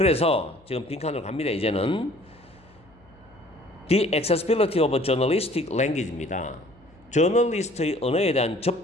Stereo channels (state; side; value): noise; left; hum, 28 dB below the sound